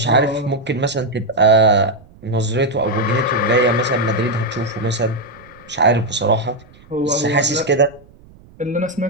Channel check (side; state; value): right; noise; rumble, 25 dB below the sound